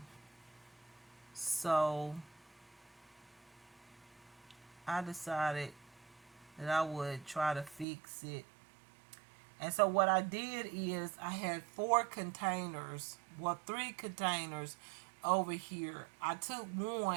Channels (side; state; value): left; drops out; at 7.9 s